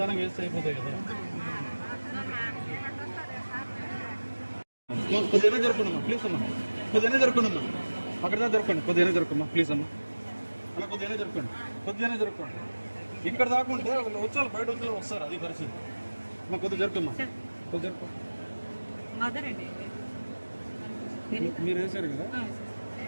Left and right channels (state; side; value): inverted; both; correlation -1.00